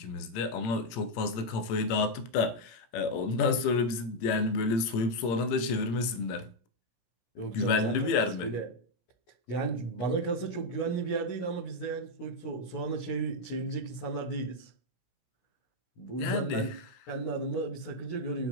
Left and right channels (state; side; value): late; right; 18 ms